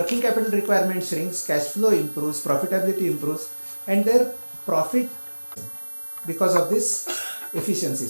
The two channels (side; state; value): both; inverted; correlation -1.00